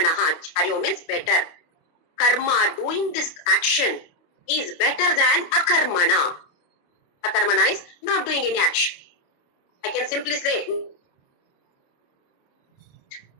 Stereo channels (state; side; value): late; right; 28 ms